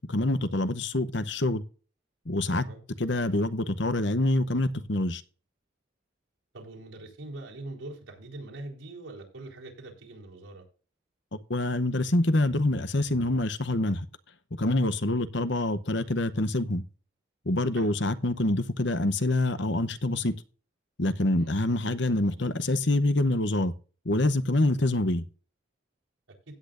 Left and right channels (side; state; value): both; normal; correlation 0.65